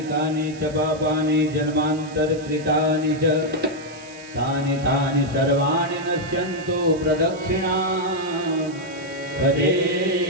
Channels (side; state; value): right; noise; hiss, 21 dB below the sound